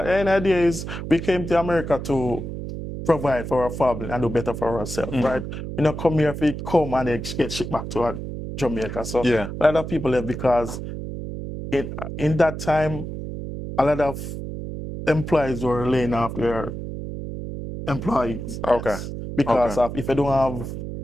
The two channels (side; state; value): right; noise; hum, 7 dB below the sound